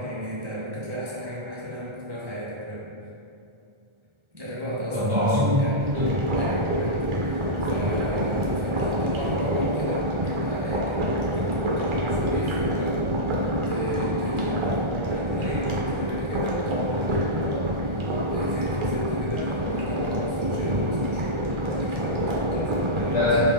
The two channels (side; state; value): left; late; 1.4 ms